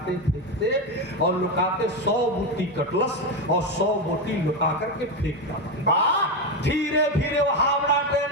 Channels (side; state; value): both; normal; correlation 0.12